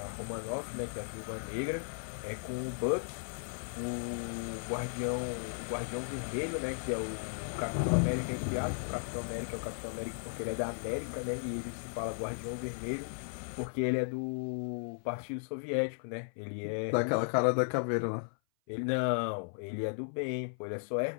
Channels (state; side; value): silent; right; 54 dB below the other